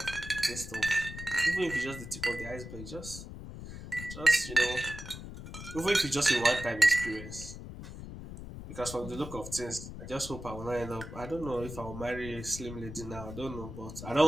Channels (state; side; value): noise; left; rumble, 10 dB below the sound